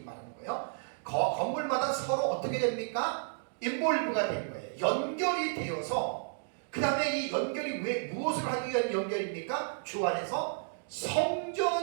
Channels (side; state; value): left; silent; digital silence